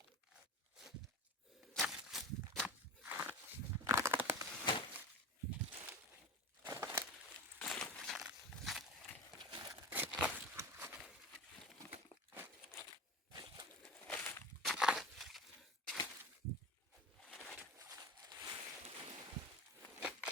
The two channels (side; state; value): both; normal; correlation 0.31